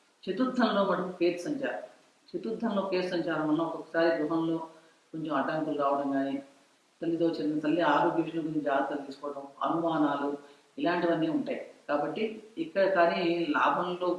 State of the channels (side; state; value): both; identical; correlation 1.00